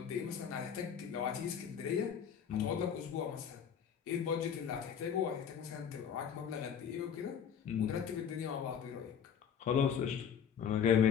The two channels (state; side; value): quieter; right; 7.8 dB